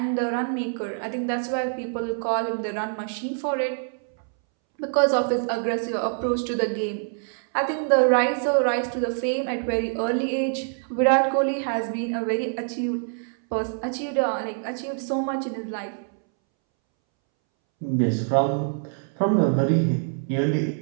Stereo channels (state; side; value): silent; left; 62 dB below the other